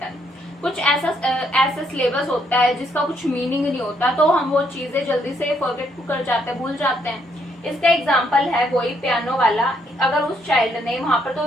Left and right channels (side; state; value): both; normal; correlation 0.72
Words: कुछ ऐसा सिलेबस होता है जिसका कुछ मीनिंग नहीं होता, तो हम वो चीजें जल्दी से फॉरगेट कर जाते हैं, भूल जाते हैं। इसका एग्जांपल है वही पियानो वाला। अगर उस चाइल्ड ने वहां पर